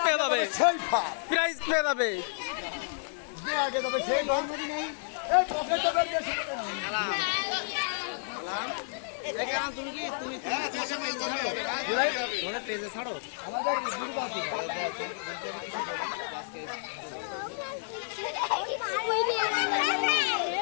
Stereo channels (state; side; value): silent; right; 57 dB below the other